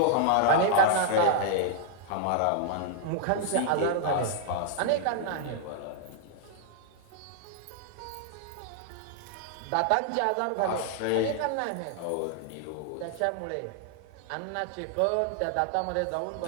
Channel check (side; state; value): both; different; correlation -0.01